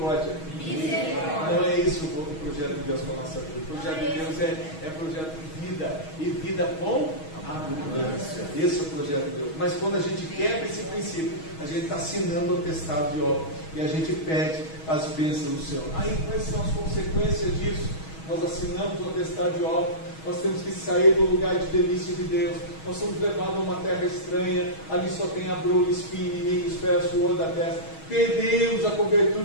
Não é isso o projeto de Deus para a nossa vida. O projeto de Deus é projeto de vida, e vida com abundância. Esse é o projeto de Deus. Mas quando a gente quebra esse princípio, a gente está assinando o atestado de obra, e a gente perde as bênçãos do Senhor. Aí quais são as consequências disso? Nós assinamos o atestado de obra, nós temos que sair do lugar de delícia de Deus, nós somos levados a uma terra estranha, ali só tem abrolho, espinho, inimigos, pés, suor da testa. Perdemos a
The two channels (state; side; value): late; right; 6.3 ms